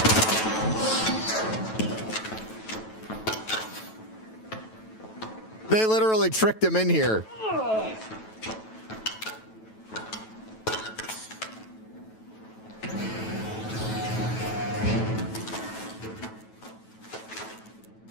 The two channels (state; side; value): late; right; 9.2 ms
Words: They literally tricked him in here.